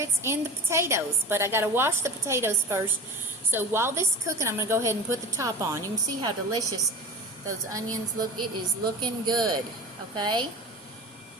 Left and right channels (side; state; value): both; normal; correlation 0.33